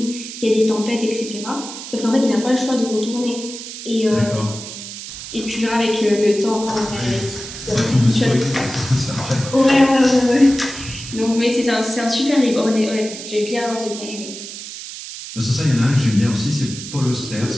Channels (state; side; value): noise; right; hiss, 11 dB below the sound